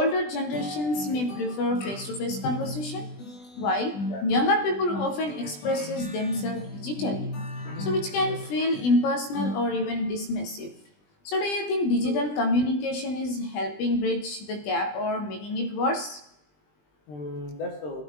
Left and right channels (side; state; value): right; late; 20 ms